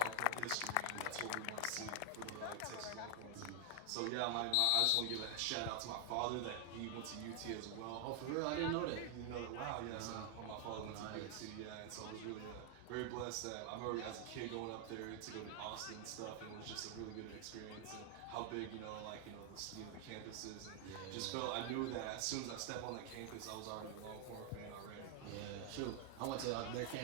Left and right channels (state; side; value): different; both; correlation 0.00